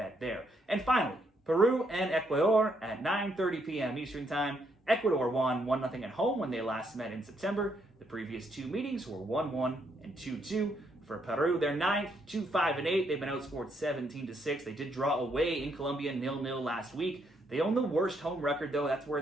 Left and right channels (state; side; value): normal; both; correlation 0.74